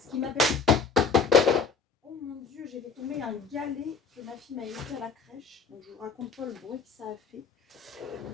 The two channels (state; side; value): quieter; right; 5.2 dB